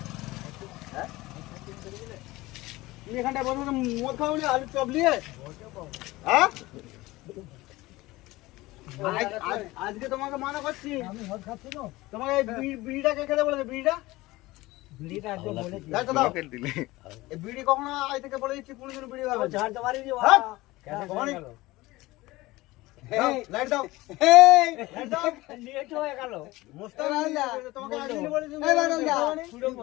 হ্যাঁ তুমি এখানটায় বসে মদ খাওনি, আলু চপ নিয়ে? হ্যাঁ আজকে তোমাকে মানা করছি। আমি মদ খাচ্ছি না। তোমাকে বিড়িটা কে খেতে বলেছে? বিড়িটা একদম বলেছি। এই বিড়ি কখনো আজ থেকে বলে দিচ্ছি, কোনদিন বিড়ি খাবে? ঝাড় তো মারি দিও। লাইট দাও। লাইট দাও। লেট হয়ে গেল। মোস্তান আল্লাহ তোমাকে আজকে বলেছি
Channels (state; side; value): quieter; right; 19.6 dB